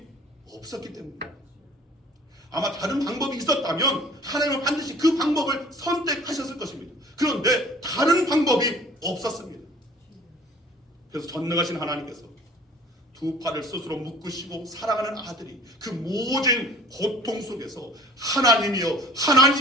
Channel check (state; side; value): normal; both; correlation 0.49